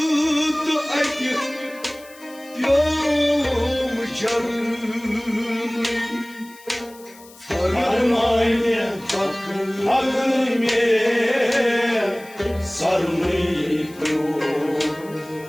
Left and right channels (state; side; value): noise; left; hiss, 23 dB below the sound